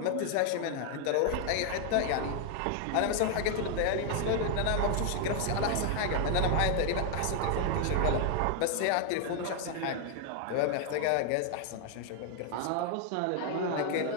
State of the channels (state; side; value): different; both; correlation 0.00